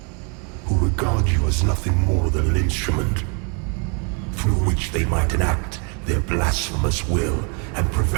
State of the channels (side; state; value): left; quieter; 36.5 dB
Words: who regard you as nothing more than an instrument through which they might enact their blasphemous will and